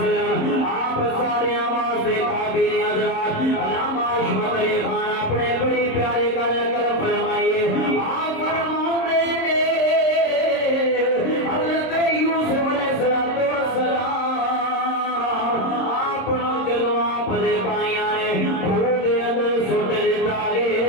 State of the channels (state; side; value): late; right; 26 ms